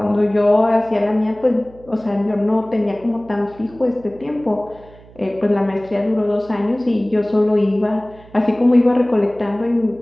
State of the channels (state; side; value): noise; right; hum, 23 dB below the sound